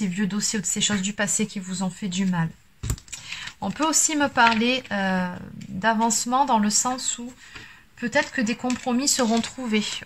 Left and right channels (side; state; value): both; identical; correlation 1.00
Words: vieux dossiers ou de ces choses du passé qui vous ont fait du mal. On peut aussi me parler d'avancement dans le sens où peut-être que des compromis seront trouvés